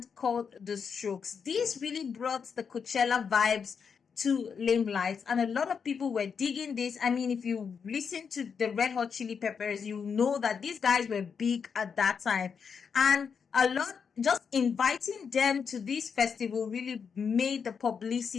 called The Strokes. These really brought the Coachella vibes to limelight, and a lot of people were digging this. I mean, if you listen to the Red Hot Chili Peppers, you know that these guys were big at that time, and a lot, just inviting them to this festival really made the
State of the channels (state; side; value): quieter; right; 6.3 dB